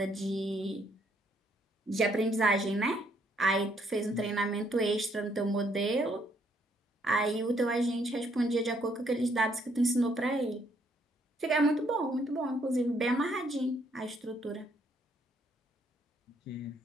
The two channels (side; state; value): both; normal; correlation 0.70